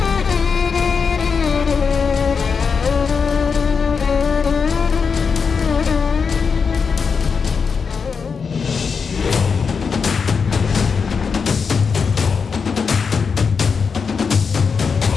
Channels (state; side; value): quieter; right; 5.6 dB